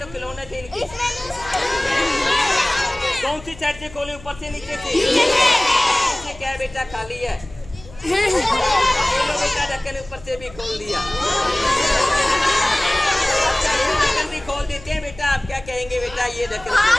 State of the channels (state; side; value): noise; left; hum, 20 dB below the sound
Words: खिलौने थे इनके। कौन सी साइड से खोले? ऊपर से नीचे से? क्या है बेटा? खाली है। बेटा ढक्कन ऊपर से भी खोल दिया। ये देखो